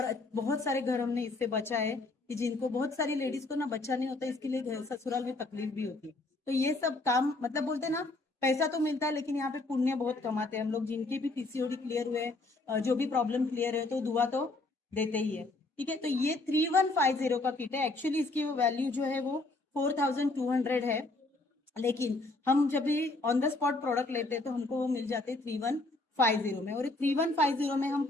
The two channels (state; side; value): quieter; right; 3.0 dB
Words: बहुत सारे घर हमने इससे बचा है कि जिनको, बहुत सारी लेडीज को ना बच्चा नहीं होता, इसके लिए घर ससुराल में तकलीफ भी होती है। तो ये सब काम, मतलब बोलते हैं ना, पैसा तो मिलता है लेकिन यहाँ पे पुण्य बहुत कमाते हैं हम लोग। जिनके भी पीसीओडी क्लियर हुए, जो भी प्रॉब्लम क्लियर है, तो दुआ तो देते ही है। ठीक है, तो ये 3150 का किट है। एक्चुअली इसकी वैल्यू जो है वो 4200 है, लेकिन हम जब भी ऑन द स्पॉट प्रोडक्ट लेते हैं तो हमको वो मिल जाते हैं 3150 में। और 3150 में हम